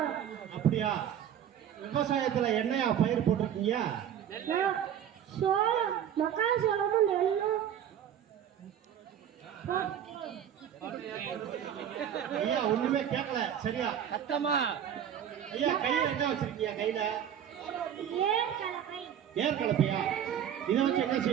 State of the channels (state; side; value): quieter; left; 9.6 dB